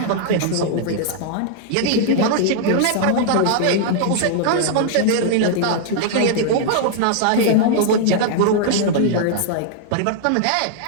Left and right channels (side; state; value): both; different; correlation -0.01